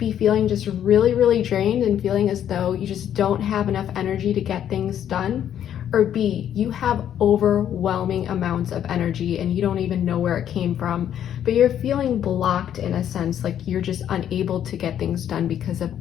feeling just really drained and feeling as though you just don't have enough energy to get things done. Or B, you have overwhelming amounts of energy and you don't even know where it came from, but you're feeling blocked in a sense, like you're just unable to get things done because of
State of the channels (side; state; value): right; quieter; 10.1 dB